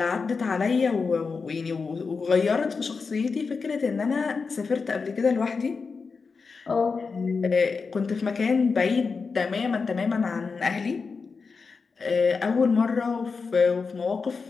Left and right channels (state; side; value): quieter; right; 4.8 dB